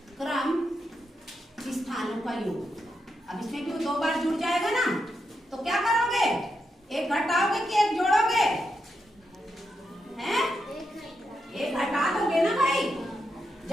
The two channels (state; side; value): normal; both; correlation 0.84